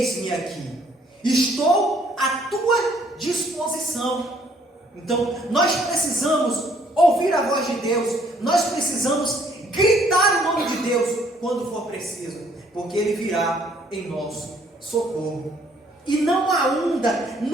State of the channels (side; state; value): both; normal; correlation 0.64